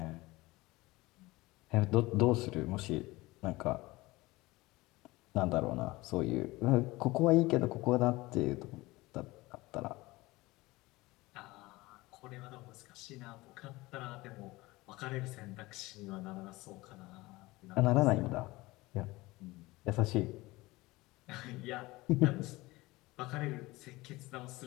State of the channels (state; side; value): quieter; right; 20.7 dB